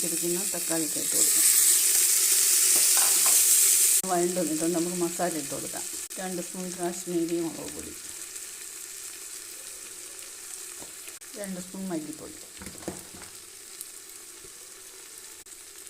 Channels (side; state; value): both; identical; correlation 1.00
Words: തക്കാളി ഇട്ട് കൊടുക്കാം. വഴണ്ട് വന്നിട്ടുണ്ട്. നമുക്ക് മസാല ഇട്ട് കൊടുക്കാം. 2 സ്പൂൺ കാശ്മീരി മുളക് പൊടി, 2 സ്പൂൺ മല്ലിപ്പൊടി,